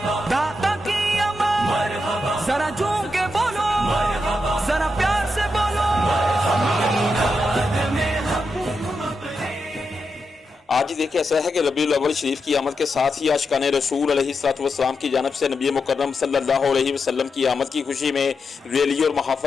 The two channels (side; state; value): both; normal; correlation 0.86